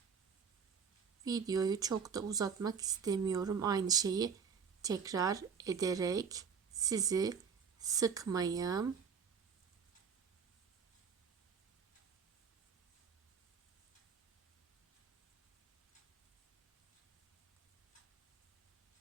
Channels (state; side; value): quieter; left; 6.4 dB